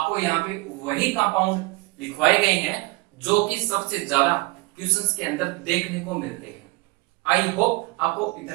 यहाँ पे वही कंपाउंड लिखवाए गए हैं जो कि सबसे ज्यादा क्वेश्चंस के अंदर देखने को मिलते हैं। आई होप आपको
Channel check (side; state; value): left; quieter; 24.5 dB